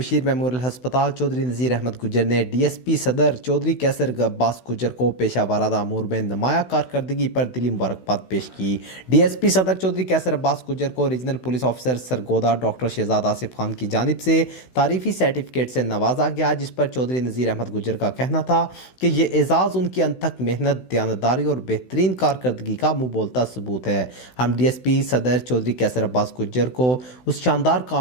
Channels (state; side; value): late; right; 16 ms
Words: मेमोरियल हस्पताल चौधरी नज़ीर अहमद गुज्जर ने डीएसपी सदर चौधरी कैसर अब्बास गुज्जर को पेशा वाराना अमूर में नुमाया कारकर्दगी पर दिली मुबारकबाद पेश की। डीएसपी सदर चौधरी कैसर अब्बास गुज्जर को regional police officer Sargodha doctor Shahzad Asif Khan की जानिब से तारीफी सर्टिफिकेट से नवाजा गया, जिस पर चौधरी नज़ीर अहमद गुज्जर का कहना था कि ये एजाज़ उनकी अनथक मेहनत, दयानतदारी और बेहतरीन कारकर्दगी का मुँह बोलता सबूत है। हम डीएसपी सदर चौधरी कैसर अब्बास गुज्जर को उस शानदार